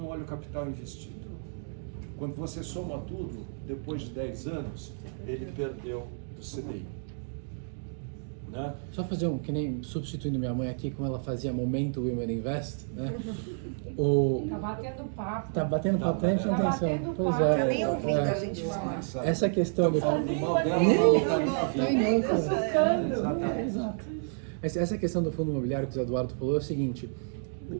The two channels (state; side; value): silent; left; digital silence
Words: olha o capital investido. Quando você soma tudo, depois de 10 anos, ele perdeu do CDI. Né? Só fazer que nem substituindo minha mãe aqui, como ela fazia Momento Women Invest, né? Tá batendo papo. Tá batendo papo, tá prestando atenção. Pois é. Tá nem ouvindo a gente falar. Essa questão do... Essa questão do fundo imobiliário que o Eduardo falou é o seguinte,